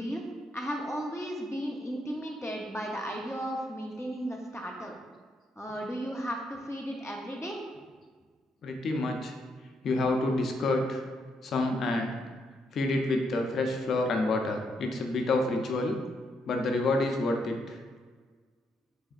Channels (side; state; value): both; normal; correlation 0.77